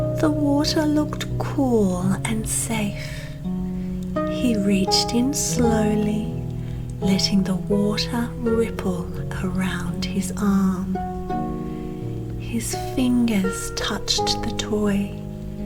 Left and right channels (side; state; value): both; identical; correlation 1.00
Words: The water looked cool and safe. He reached in slowly, letting the water ripple around his arm. His fingers touched the toy,